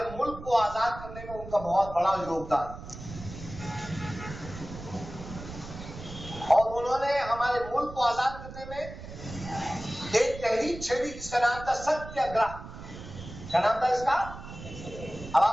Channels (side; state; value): right; noise; rumble, 12 dB below the sound